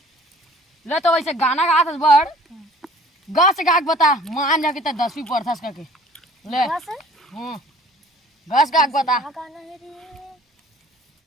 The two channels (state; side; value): normal; both; correlation 0.51